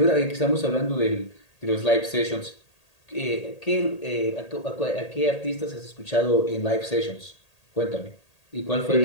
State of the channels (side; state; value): right; late; 1.8 ms